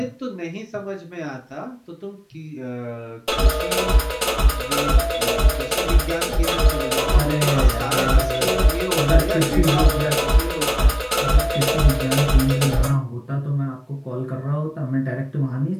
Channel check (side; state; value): both; identical; correlation 1.00